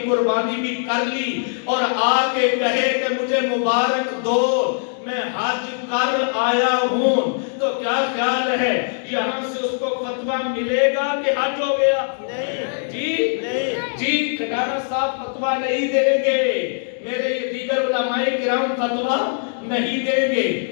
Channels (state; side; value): silent; right; digital silence